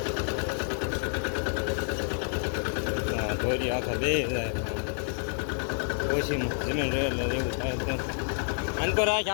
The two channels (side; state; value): right; silent; digital silence